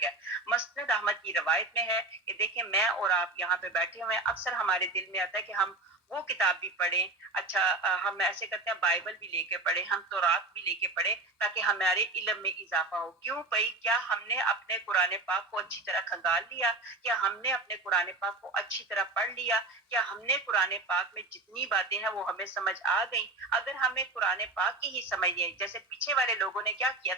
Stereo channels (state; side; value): quieter; left; 3.3 dB